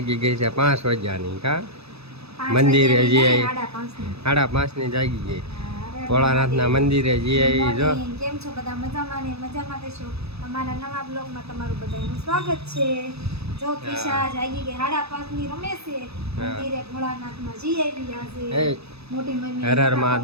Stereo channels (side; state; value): left; late; 0.79 ms